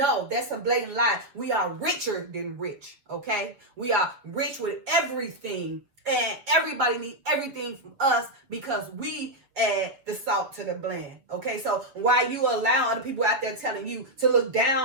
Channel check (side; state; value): left; late; 7.2 ms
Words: that's a blatant lie. We are richer than rich, okay? We are rich with everything, and everybody needs everything from us because we add the salt to the blend, okay? So why you allow other people out there telling you to look